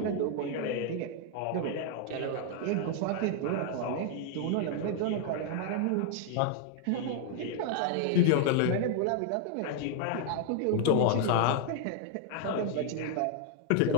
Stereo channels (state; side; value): different; both; correlation 0.00